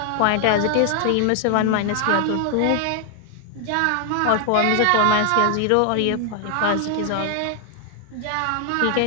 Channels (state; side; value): different; both; correlation 0.00